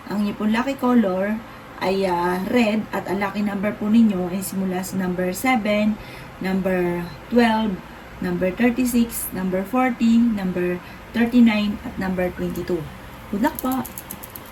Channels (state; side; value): identical; both; correlation 1.00